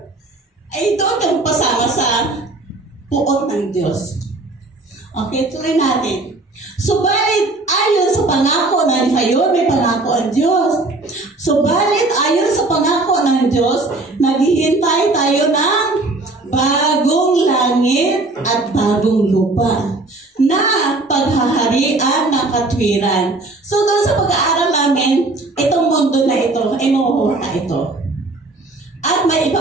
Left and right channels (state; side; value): quieter; left; 3.1 dB